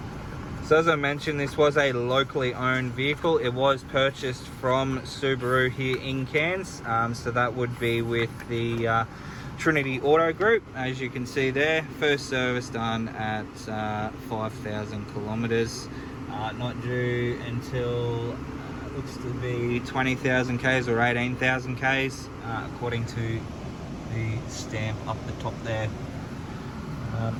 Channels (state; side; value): identical; both; correlation 1.00